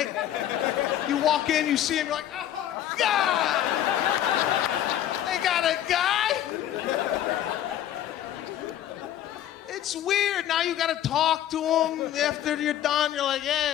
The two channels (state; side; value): quieter; right; 11.6 dB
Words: You walk in, you see him, you're like, oh, God! They got a guy? It's weird. Now you gotta talk to him after you're done. You're like, yeah,